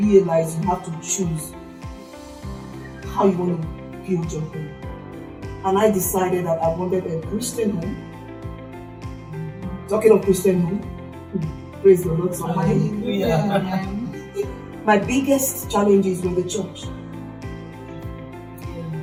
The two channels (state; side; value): identical; both; correlation 1.00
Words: you have to choose how you want to build your home. And I decided that I wanted a Christian home. Talking of Christian home, praise the Lord. My biggest challenges were the church.